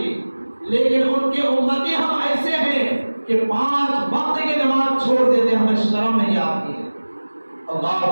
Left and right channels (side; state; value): both; inverted; correlation -1.00